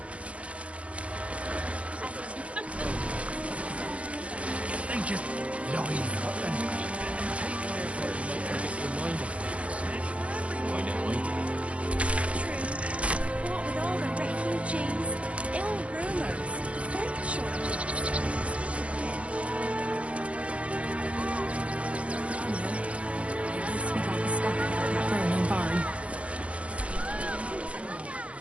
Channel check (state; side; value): late; left; 0.063 ms